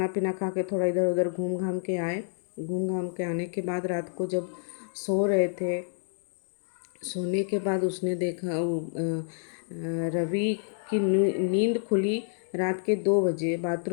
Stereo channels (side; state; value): right; silent; digital silence